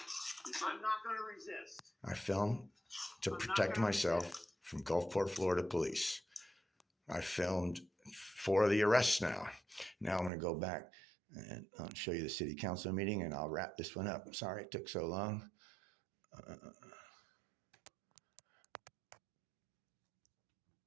I'm not going to resist. I filmed to protect myself from Gulfport, Florida police. I filmed 4 of the arrests now. Now I'm going to go back and I'll show you the City Council meeting, and I'll wrap this one up. I'm sorry it took so long.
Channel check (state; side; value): drops out; left; at 10.3 s